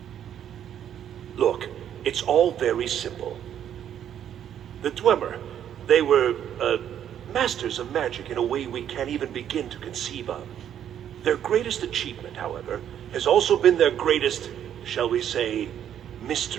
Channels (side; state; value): left; quieter; 9.9 dB